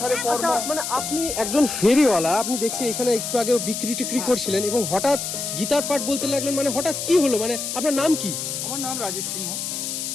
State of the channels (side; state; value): left; noise; hiss, 4 dB below the sound